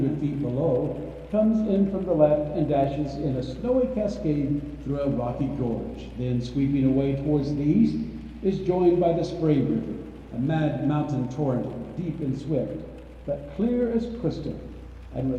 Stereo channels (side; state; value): both; identical; correlation 1.00